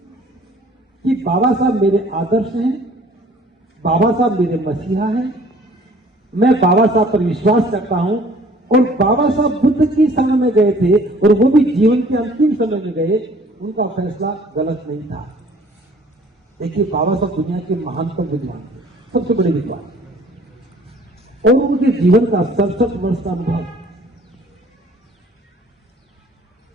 कि बाबा साहब मेरे आदर्श हैं, बाबा साहब मेरे मसीहा हैं, मैं बाबा साहब पर विश्वास करता हूं। और बाबा साहब बुद्ध की शरण में गए थे और वो भी जीवन के अंतिम समय में गए, उनका फैसला गलत नहीं था। देखिए, बाबा साहब दुनिया के महानतम विद्वान थे, सबसे बड़े विद्वान, और उनके जीवन का 67 वर्ष का अनुभव,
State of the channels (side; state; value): both; normal; correlation 0.54